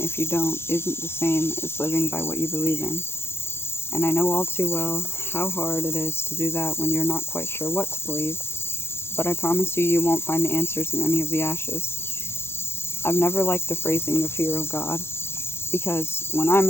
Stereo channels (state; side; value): late; right; 0.12 ms